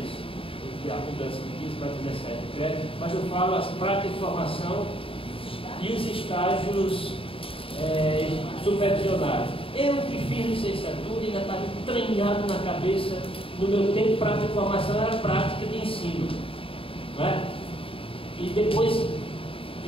isso. E a mudança de 15 para 17 créditos, mas eu falo as práticas de formação e os estágios supervisionados. Eu que fiz licenciatura ainda estava entranhado na cabeça, no meu tempo, prática de formação era prática de ensino. Não é? E depois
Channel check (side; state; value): right; late; 0.26 ms